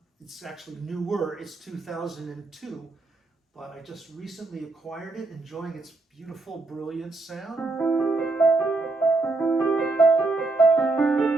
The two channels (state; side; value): quieter; left; 3.3 dB